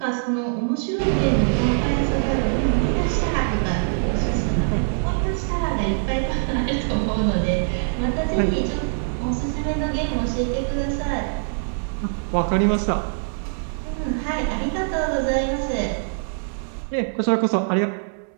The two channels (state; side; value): silent; left; digital silence